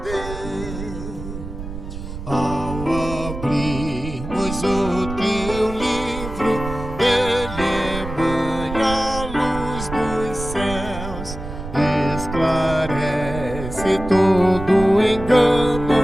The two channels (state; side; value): noise; right; rumble, 9 dB below the sound